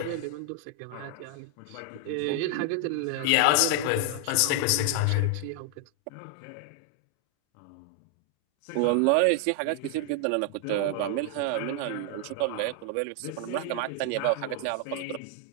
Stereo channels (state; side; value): different; both; correlation 0.00